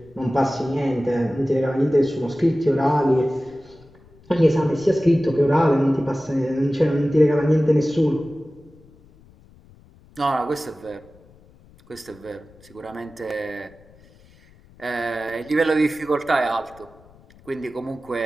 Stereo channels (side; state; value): left; noise; rumble, 26 dB below the sound